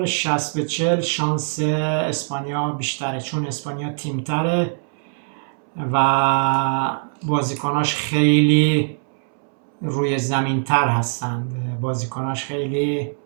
60-40 شانس اسپانیا بیشتره، چون اسپانیا تیمتره و بازیکناش خیلی روی زمین تر هستند، بازیکناش خیلی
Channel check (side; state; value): left; silent; 64 dB below the other